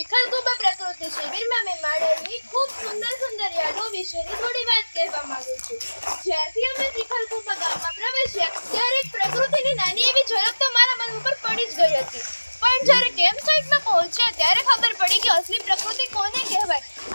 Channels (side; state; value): both; inverted; correlation -1.00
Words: પ્રકૃતિ શિબિરમાં મેં માણેલી ખૂબ સુંદર યાદો વિશેની થોડી વાત કહેવા માંગુ છું. જ્યારથી અમે ચિખલકુબા ગામમાં પ્રવેશ્યા ત્યારે એક પ્રકૃતિની નાની એવી ઝલક તો મારા મન ઉપર પડી જ ગઈ હતી. પણ જ્યારે કેમ્પ સાઇટમાં પહોંચ્યા ત્યારે ખબર પડી કે અસલી પ્રકૃતિ કોને કહેવાય.